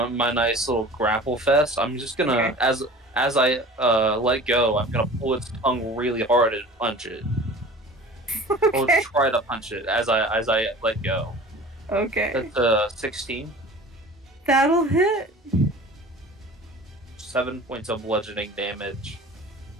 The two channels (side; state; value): both; normal; correlation 0.41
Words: my nice little grapple fest. I'm just gonna, Okay. as I let go, I'm gonna pull its tongue really hard and punch it. Or Okay. try to punch it as I let go. Okay. That's 16. That'll hit. 7 points of bludgeoning damage.